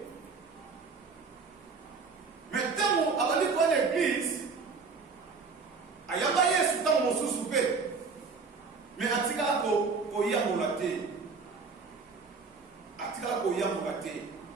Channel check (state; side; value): quieter; left; 4.7 dB